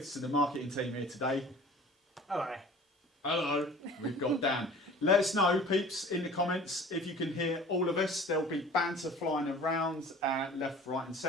of the marketing team here today. Hello. Hello. We've got Dan. Let us know, peeps, in the comments if you can hear all of us. There'll be banter flying around left, right and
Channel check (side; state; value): both; normal; correlation 0.45